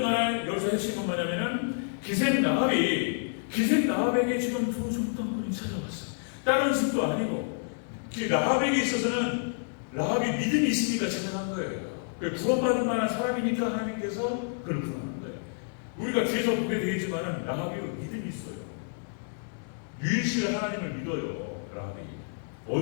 간에 여기서 핵심은 뭐냐면은 기생 라합에게 지금 두 정탐꾼이 찾아왔어요. 다른 집도 아니고 라합에게 있어서는 라합이 믿음이 있으니까 찾아간 거예요. 구원받을 만한 사람이니까 하나님께서 그를 부르는 거예요. 우리가 뒤에서 보게 되겠지만은 라합이 믿음이 있어요. 유일신 하나님을 믿어요. 라합이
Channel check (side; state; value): right; silent; digital silence